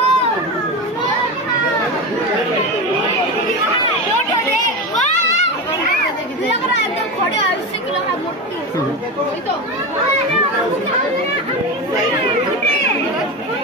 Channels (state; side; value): normal; both; correlation 0.21